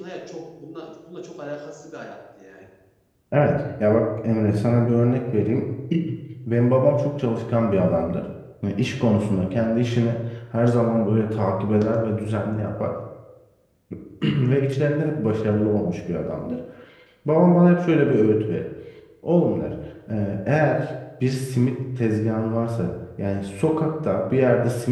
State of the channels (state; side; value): identical; both; correlation 1.00